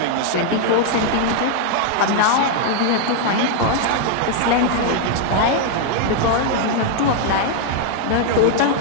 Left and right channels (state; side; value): different; both; correlation 0.00